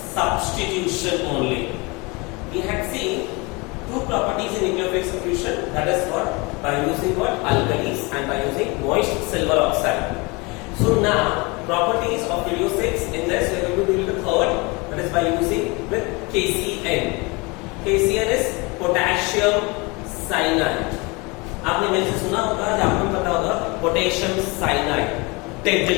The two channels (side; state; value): right; quieter; 26.9 dB